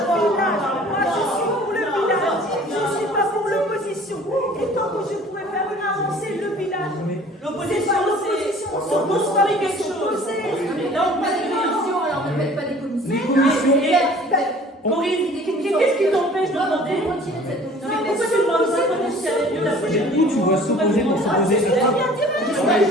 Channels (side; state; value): both; normal; correlation 0.49